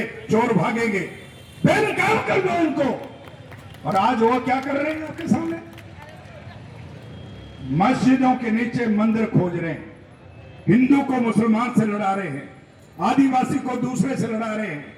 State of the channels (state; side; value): identical; both; correlation 1.00